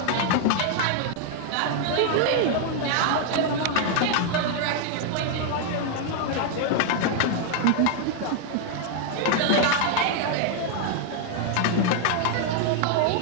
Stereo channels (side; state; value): both; different; correlation 0.00